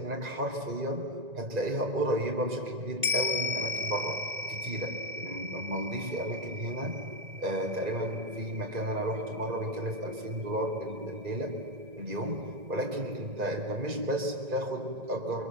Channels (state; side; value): late; left; 1.9 ms